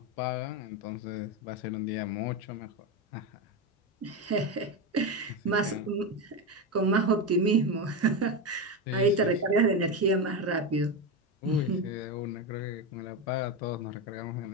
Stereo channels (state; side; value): normal; both; correlation 0.14